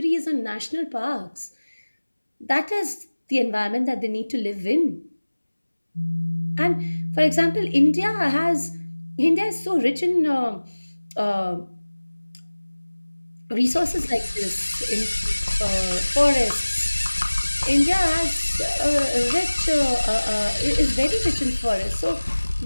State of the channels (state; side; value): inverted; both; correlation -1.00